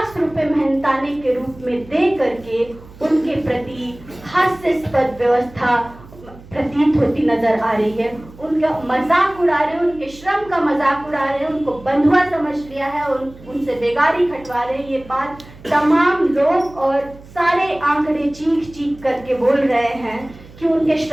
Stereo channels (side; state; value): right; noise; hum, 20 dB below the sound